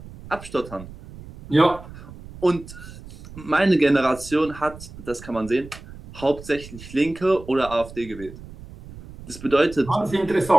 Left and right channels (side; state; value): right; noise; rumble, 16 dB below the sound